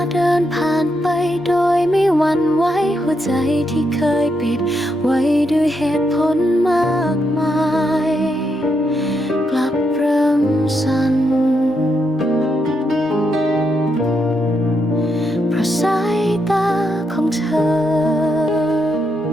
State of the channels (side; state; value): both; normal; correlation 0.80